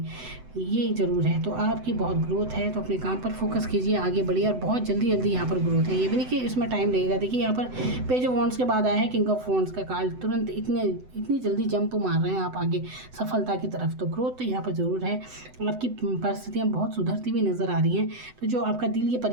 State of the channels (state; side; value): late; left; 7.9 ms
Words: ये ज़रूर है। तो आपकी बहुत ग्रोथ है, तो अपने काम पर फोकस कीजिए, आगे बढ़िए, और बहुत जल्दी जल्दी यहाँ पर ग्रोथ है। ये भी नहीं कि इसमें टाइम लगेगा। देखिए यहाँ पर पेज ऑफ वॉन्ड्स के बाद आया है किंग ऑफ वॉन्ड्स का कार्ड, तुरंत इतनी जल्दी जंप मार रहे हैं आप आगे सफलता की तरफ। तो ग्रोथ तो यहाँ पर ज़रूर है। आपकी परिस्थितियाँ बहुत सुधरती हुई नज़र आ रही हैं। तो जो आपका दिल ये